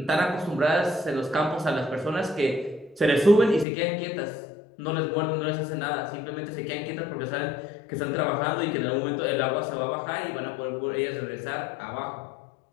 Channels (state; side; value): drops out; right; at 3.7 s